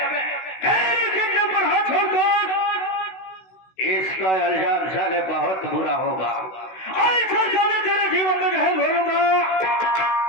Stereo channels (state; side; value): late; right; 16 ms